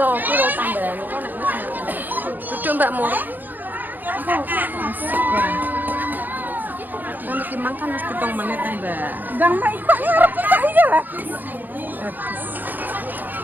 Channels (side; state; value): left; late; 0.086 ms